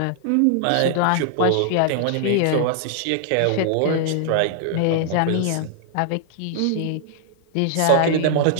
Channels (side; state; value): both; different; correlation -0.01